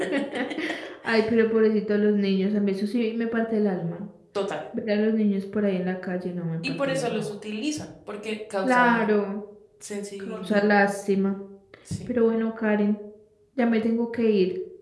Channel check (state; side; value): identical; both; correlation 1.00